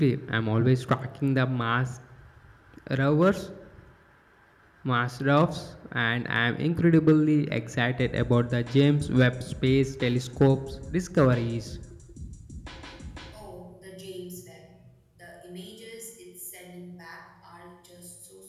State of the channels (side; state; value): both; identical; correlation 1.00